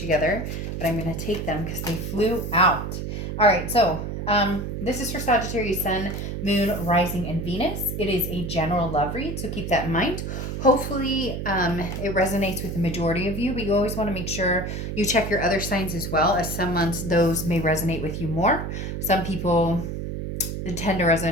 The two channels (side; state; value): right; noise; hum, 5 dB below the sound